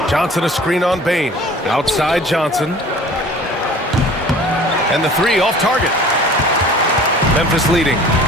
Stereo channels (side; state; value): both; normal; correlation 0.46